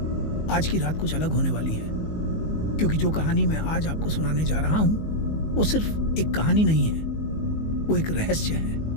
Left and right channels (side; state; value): right; late; 19 ms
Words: आज की रात कुछ अलग होने वाली है क्योंकि जो कहानी मैं आज आपको सुनाने जा रहा हूं वो सिर्फ एक कहानी नहीं है, वो एक रहस्य है,